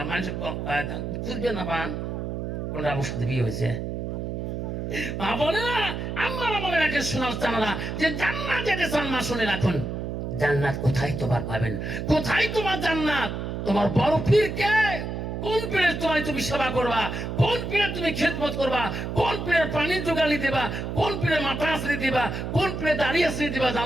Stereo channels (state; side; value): noise; right; hum, 4 dB below the sound